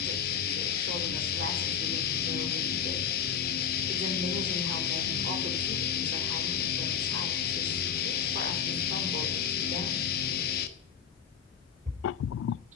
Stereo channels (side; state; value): right; quieter; 7.7 dB